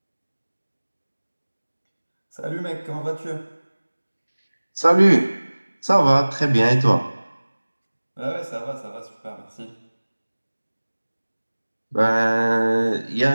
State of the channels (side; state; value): both; inverted; correlation -1.00